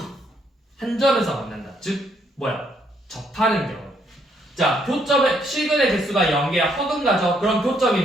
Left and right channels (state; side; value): normal; both; correlation 0.71